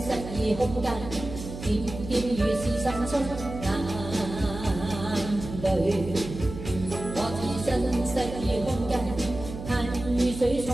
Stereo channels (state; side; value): noise; right; hum, 10 dB below the sound